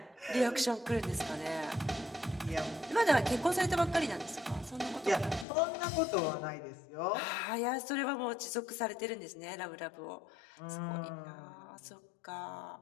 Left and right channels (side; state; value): right; drops out; at 5.5 s